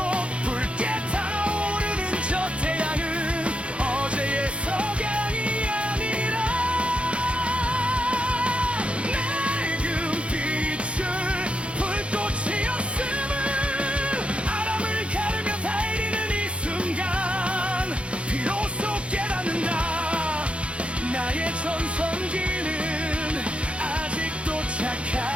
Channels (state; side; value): late; left; 0.060 ms